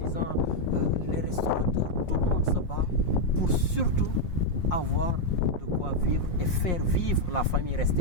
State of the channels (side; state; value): right; late; 5.6 ms